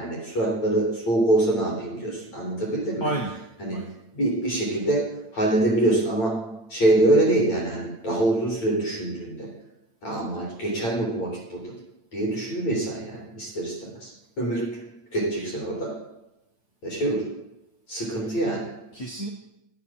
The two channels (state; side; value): late; right; 8.9 ms